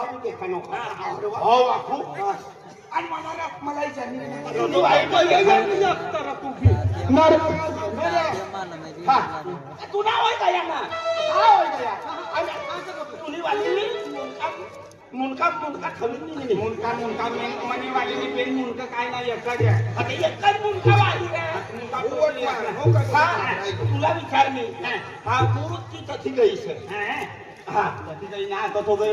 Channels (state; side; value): identical; both; correlation 1.00